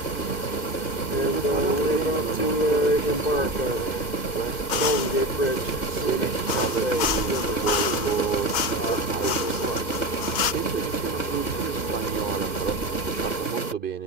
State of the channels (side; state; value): right; late; 2.1 ms